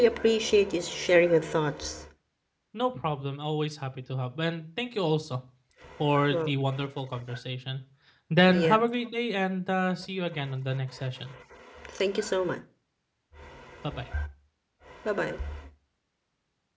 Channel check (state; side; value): identical; both; correlation 1.00